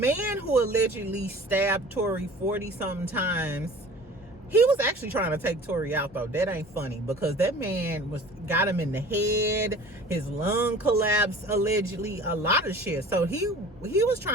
who allegedly stabbed Tory 40-something times, he was actually trying to take Tory out though. That ain't funny because that man got him in the head. His lung collapsed allegedly. A lot of shit. So he was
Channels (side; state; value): both; normal; correlation 0.44